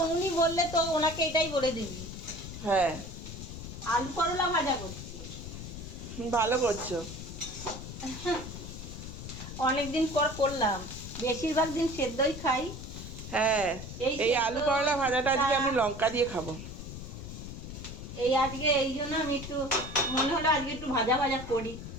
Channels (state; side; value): noise; left; rumble, 10 dB below the sound